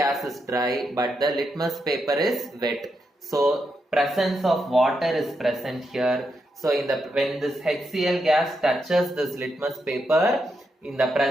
is dry but the litmus paper is wet, so presence of water is present here. So when this HCl gas touches this litmus paper, in the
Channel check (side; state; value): both; normal; correlation 0.83